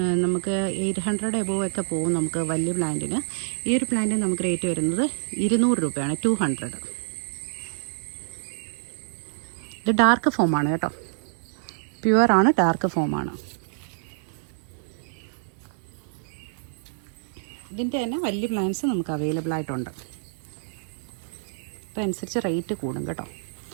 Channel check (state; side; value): silent; left; digital silence